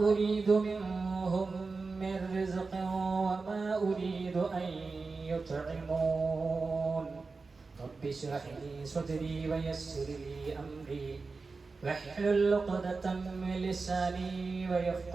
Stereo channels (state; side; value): quieter; left; 4.2 dB